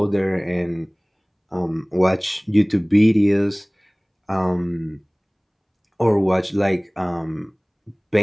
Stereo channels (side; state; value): both; identical; correlation 1.00